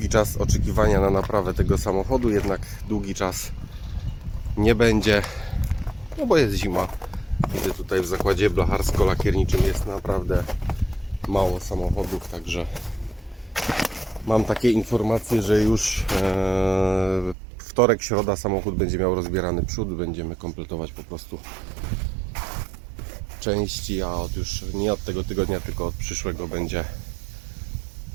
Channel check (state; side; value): drops out; left; at 17.4 s